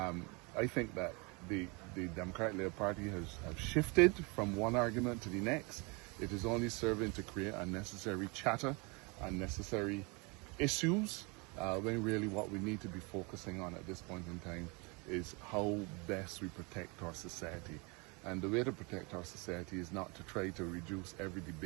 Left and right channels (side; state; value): left; quieter; 29.7 dB